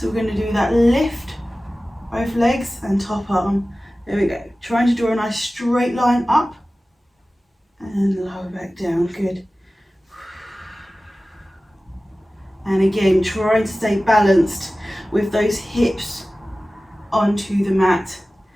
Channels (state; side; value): normal; both; correlation 0.96